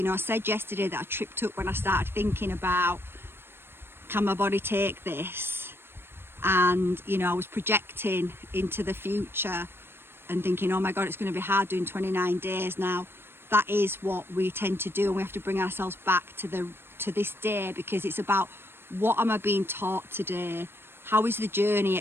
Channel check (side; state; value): left; late; 0.11 ms